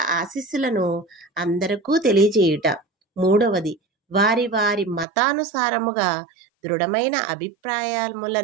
ఆశీస్సులను అందరికీ తెలియజేయుట, 3వది వారి వారి మతానుసారముగా దృఢమైన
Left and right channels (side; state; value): left; drops out; at 5.1 s